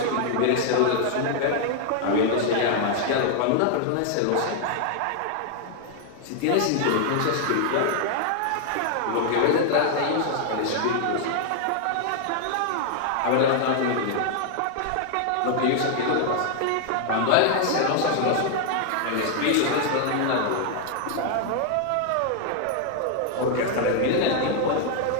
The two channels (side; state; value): both; different; correlation 0.00